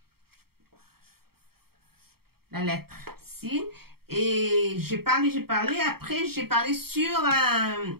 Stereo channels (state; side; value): late; left; 0.95 ms